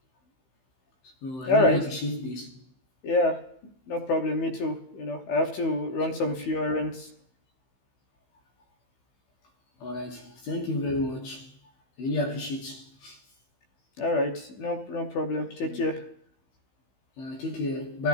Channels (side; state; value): right; late; 15 ms